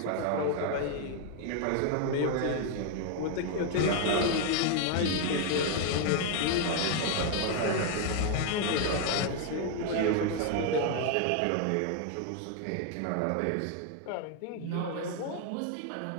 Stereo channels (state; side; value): different; both; correlation 0.00